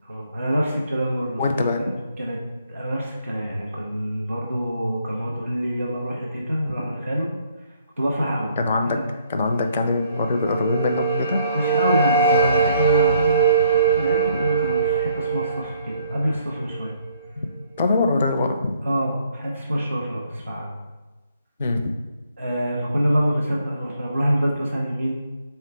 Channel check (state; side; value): inverted; both; correlation -0.67